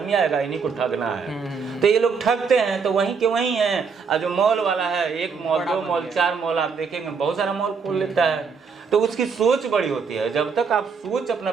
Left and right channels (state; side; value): quieter; left; 5.6 dB